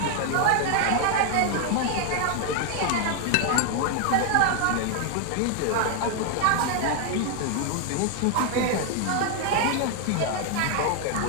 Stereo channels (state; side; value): different; both; correlation 0.00